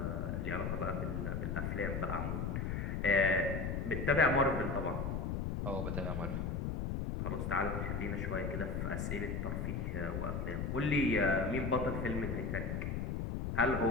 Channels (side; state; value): left; noise; rumble, 1 dB below the sound